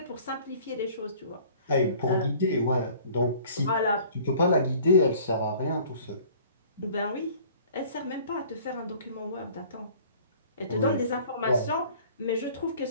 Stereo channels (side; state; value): both; inverted; correlation -0.51